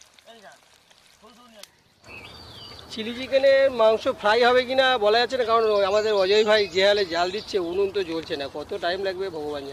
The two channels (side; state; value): both; identical; correlation 1.00